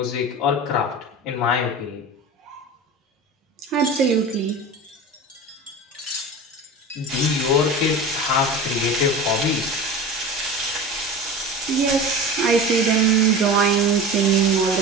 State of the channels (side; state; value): both; normal; correlation 0.32